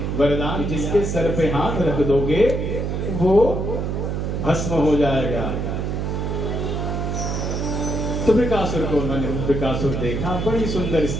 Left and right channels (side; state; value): right; noise; hum, 1 dB below the sound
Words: वरदान, जिसके सर पे हाथ रख दोगे वो भस्म हो जाएगा। तो वृकासुर को मैंने वृकासुर देखा, बड़ी सुंदर